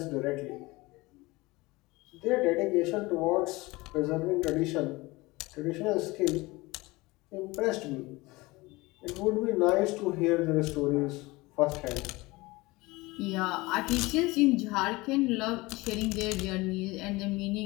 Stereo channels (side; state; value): right; quieter; 22.0 dB